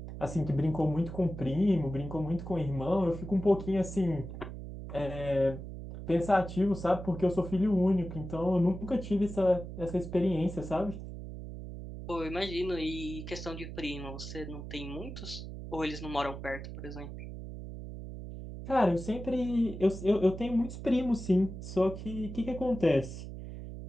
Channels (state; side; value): noise; right; hum, 9 dB below the sound